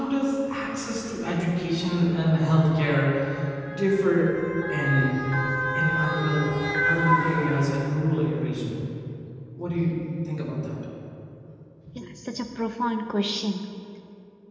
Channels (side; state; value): both; identical; correlation 1.00